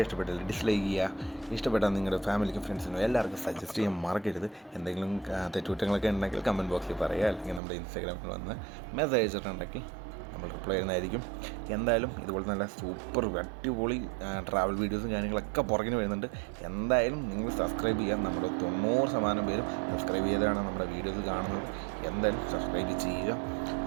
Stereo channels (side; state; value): left; drops out; at 7.6 s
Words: ഇഷ്ടപ്പെട്ടാൽ ഡിസ്ലൈക്ക് ചെയ്യുക, ഇഷ്ടപ്പെട്ടാൽ നിങ്ങളുടെ ഫാമിലിക്കും ഫ്രണ്ട്സിനും എല്ലാവർക്കും സജസ്റ്റ് ചെയ്യാൻ മറക്കരുത്. എന്തെങ്കിലും തെറ്റുകുറ്റങ്ങളൊക്കെ ഉണ്ടെങ്കിൽ കമൻറ്റ് ബോക്സിൽ പറയുക, അല്ലെങ്കിൽ നമ്മുടെ ഇൻസ്റ്റാഗ്രാമിൽ വന്ന് മെസ്സേജ് അയച്ചിട്ടുണ്ടെങ്കിൽ നമ്മൾ റിപ്ലൈ ചെയ്യുന്നതായിരിക്കും. എന്തായാലും ഇതുപോലെ നല്ല സൂപ്പർ അടിപൊളി ട്രാവൽ വീഡിയോസും കാര്യങ്ങളൊക്കെ പുറകിന് വരുന്നുണ്ട്. എന്തായാലും നിങ്ങൾ സബ്സ്ക്രൈബ് ചെയ്യാൻ, നമ്മുടെ 90% പേരും സബ്സ്ക്രൈബ് ചെയ്താണ് നമ്മുടെ വീഡിയോസ് കാണുന്നത്. എന്തായാലും സബ്സ്ക്രൈബ് ചെയ്യുക.